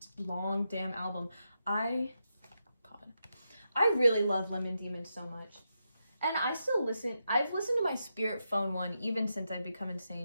long damn album. I really love Lemon Demon so much. And I still listen. I've listened to my Spirit Phone one even since I've become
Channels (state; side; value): inverted; both; correlation -0.85